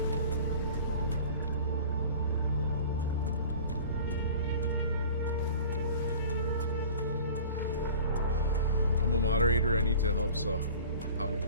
I'm a moderator. I need to help. So, how you?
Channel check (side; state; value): both; inverted; correlation -0.42